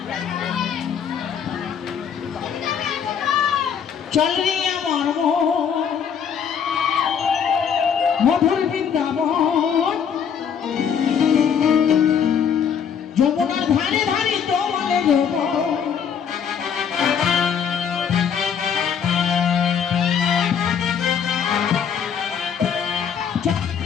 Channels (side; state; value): right; quieter; 7.6 dB